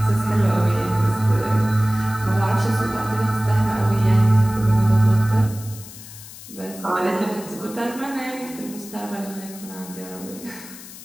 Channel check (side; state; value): left; noise; hiss, 16 dB below the sound